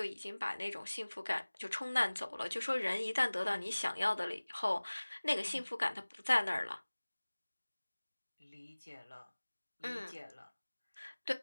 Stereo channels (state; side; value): inverted; both; correlation -1.00